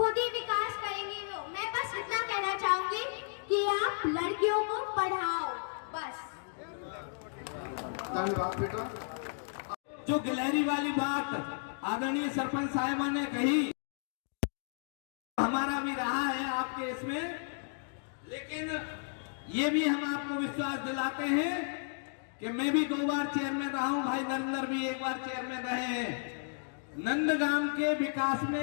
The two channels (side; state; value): right; silent; digital silence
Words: ही विकास करेंगी वो। मैं बस इतना कहना चाहूंगी कि आप लड़कियों को पढ़ाओ, बस। जो गिलहरी वाली बात आदरणीय सरपंच साहिबा ने कही, हमारा भी रहा है आपके इसमें, लेकिन ये भी हम आपको विश्वास दिलाते हैं कि मैं भी 2 बार चेयरमैन रहा हूं, भाई नरेंद्र भी 1 बार चेयरमैन रहे हैं। नंदगाम के विकास